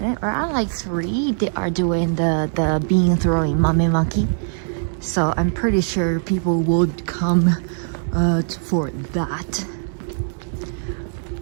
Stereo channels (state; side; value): silent; left; digital silence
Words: around like 3, they are doing the bean throwing mamemaki. So I'm pretty sure people would come for that.